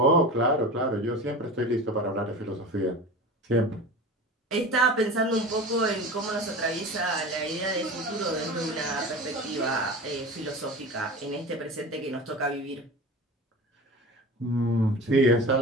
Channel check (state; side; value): normal; both; correlation 0.32